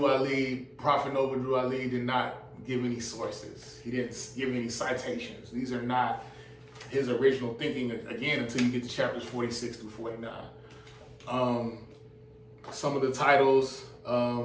Prophet Noble Drew Ali did not give any sources. He didn't give any citations. These are not his original thinking, again, until you get to chapters 46 through 49. Some of the titles,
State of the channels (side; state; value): both; identical; correlation 1.00